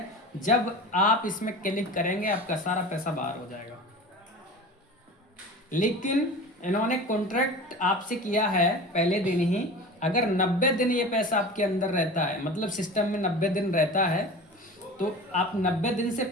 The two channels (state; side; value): normal; both; correlation 0.35